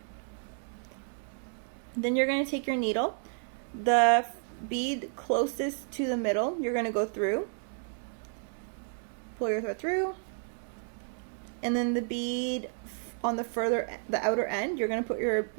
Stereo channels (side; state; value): left; silent; 57 dB below the other